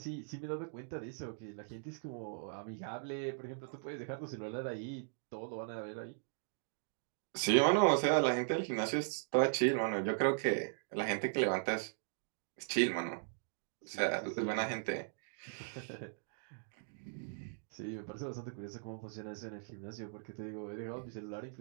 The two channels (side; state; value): left; silent; digital silence